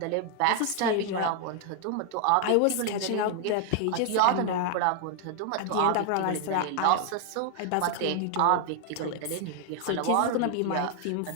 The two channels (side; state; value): both; different; correlation 0.00